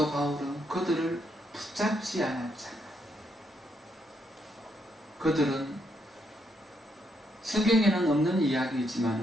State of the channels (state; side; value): normal; both; correlation 0.76